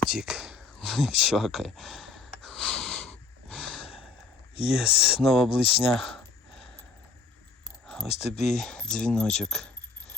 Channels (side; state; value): right; quieter; 4.2 dB